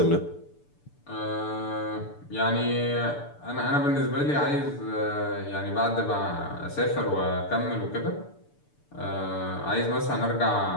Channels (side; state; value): right; late; 6.9 ms